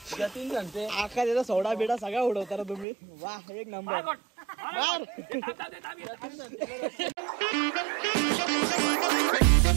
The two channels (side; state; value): left; drops out; at 2.9 s